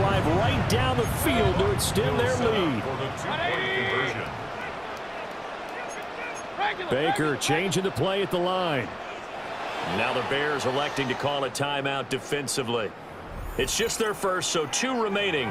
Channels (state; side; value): identical; both; correlation 1.00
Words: right down the field to extend their lead. Baker changing the play at the line. Now the Bears electing to call a timeout defensively. It's just their first, so 2